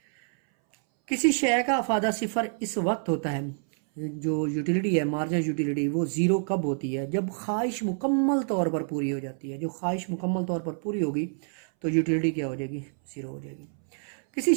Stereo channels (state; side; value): silent; left; 60 dB below the other